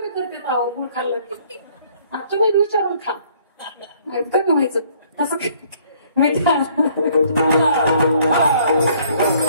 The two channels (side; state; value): both; inverted; correlation -0.61